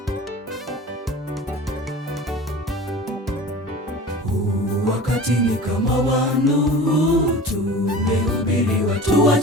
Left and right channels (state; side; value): normal; both; correlation 0.38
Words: Wakati ni kama wa Nuhu, tumehubiri watu